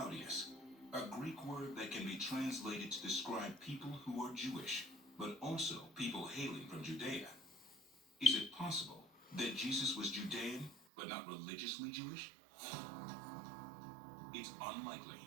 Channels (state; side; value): drops out; left; at 10.8 s